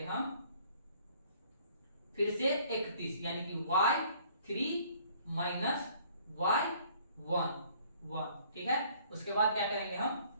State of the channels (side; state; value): both; inverted; correlation -0.58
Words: हम फिर से 31, यानी कि y3 माइनस y1, ठीक है। उसके बाद क्या करेंगे हम,